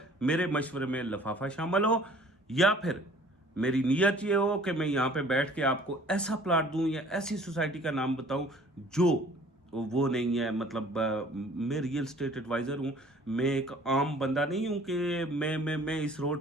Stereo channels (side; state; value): both; normal; correlation 0.52